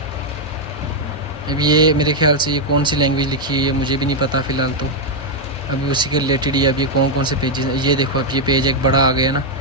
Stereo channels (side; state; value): both; normal; correlation 0.00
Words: अब ये मेरे ख्याल से ये कौन सी लैंग्वेज लिखी है ये मुझे भी नहीं पता फ़िलहाल, तो अभी उसी के रिलेटेड ही अब ये कौन से पेजेस हैं। ये देखो, अब ये पेज एक बड़ा आ गया ना।